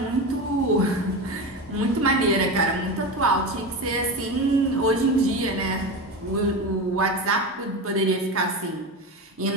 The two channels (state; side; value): normal; both; correlation 0.22